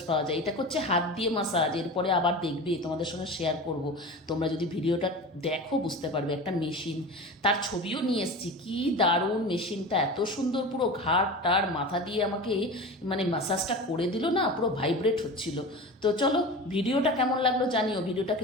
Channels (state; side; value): normal; both; correlation 0.31